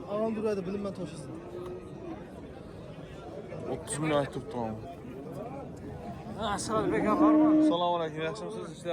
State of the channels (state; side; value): identical; both; correlation 1.00